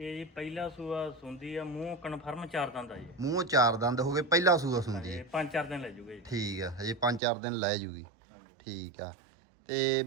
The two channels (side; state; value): left; drops out; at 7.2 s